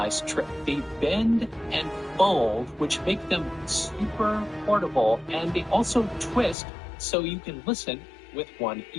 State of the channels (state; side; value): drops out; right; at 6.6 s